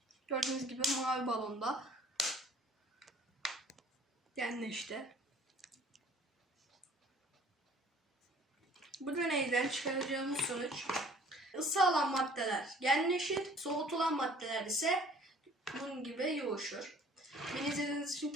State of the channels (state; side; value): normal; both; correlation 0.53